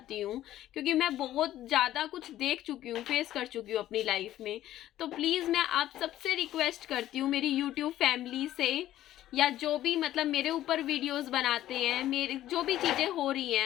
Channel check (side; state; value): right; quieter; 13.3 dB